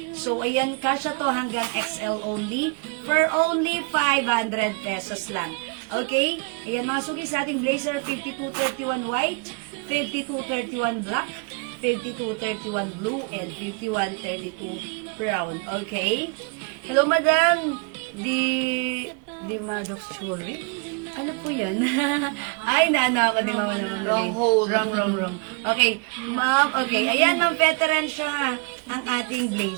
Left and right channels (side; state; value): left; quieter; 32.3 dB